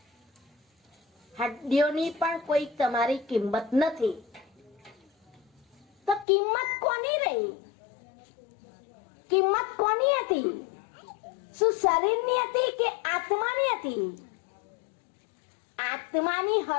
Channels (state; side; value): drops out; right; at 6.2 s